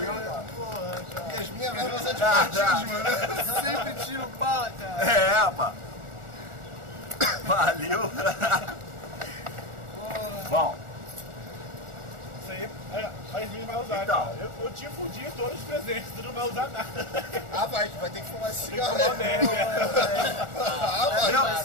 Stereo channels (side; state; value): left; late; 1.4 ms